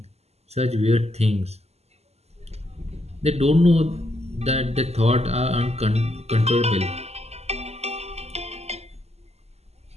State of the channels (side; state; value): left; late; 0.30 ms